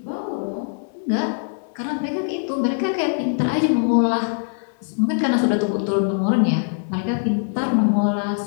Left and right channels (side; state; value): right; silent; digital silence